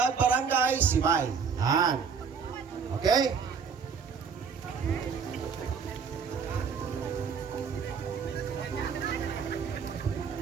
Barangay Sibay. Yan. Okay?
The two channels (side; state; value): left; quieter; 6.2 dB